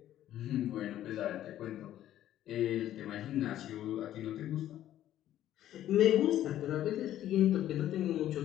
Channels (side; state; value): right; quieter; 12.4 dB